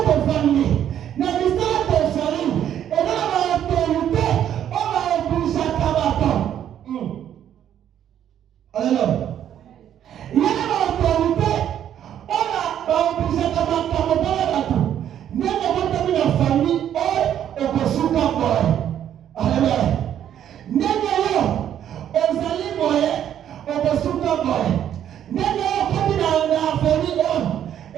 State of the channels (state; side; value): quieter; left; 10.2 dB